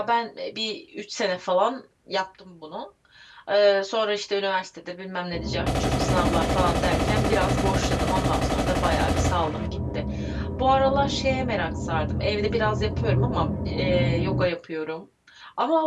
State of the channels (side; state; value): both; identical; correlation 1.00